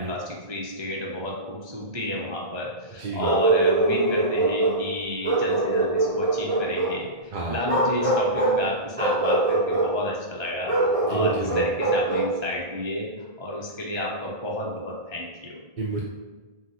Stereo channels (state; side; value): late; left; 1.6 ms